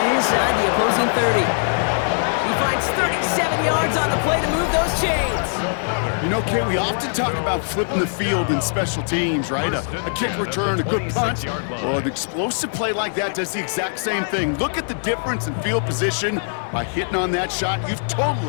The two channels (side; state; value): right; silent; digital silence